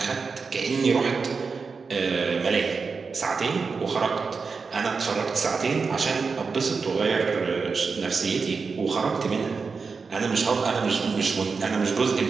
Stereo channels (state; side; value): quieter; left; 4.9 dB